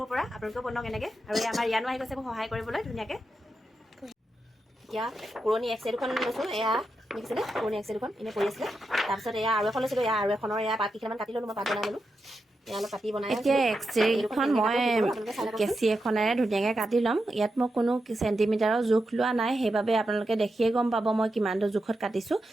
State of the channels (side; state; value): both; normal; correlation 0.87